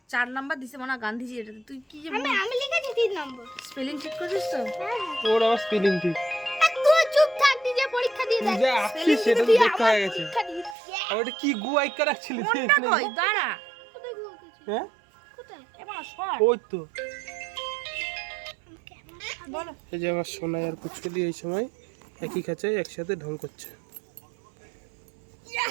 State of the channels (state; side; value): drops out; left; at 10.8 s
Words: 4 নাম্বার দিছে মানে গান্ধীজি, এটা তুই কি যে আমি লিখেছি 3 নম্বর। স্পেলিং ঠিক করেছিস তো? হ্যাঁ ওর আবার স্পেলিং ঠিক। তুই চুপ থাক, নিজে পরীক্ষা দিয়ে তুই দেখ। যা আসছিস সেটা তো দেখতে হয়ে গেছে। পরীক্ষা দিয়েছি। আর ওটা কি গু আইকা রাখছিলি তুই কোনটা এখানে? কই দাঁড়া কোথায় গুয়াকেছি? হ্যাঁ কোথায়? এবার শর্ট ওই তো। বলো। এই যে আমার সোনাই আর পুচকুলি এই সময় একই খাঁচায় একসাথে ঢং করছে।